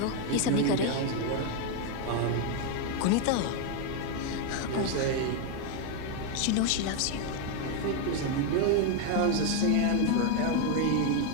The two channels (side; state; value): both; different; correlation 0.01